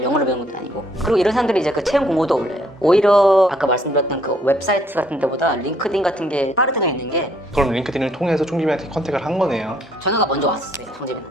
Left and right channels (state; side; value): normal; both; correlation 0.66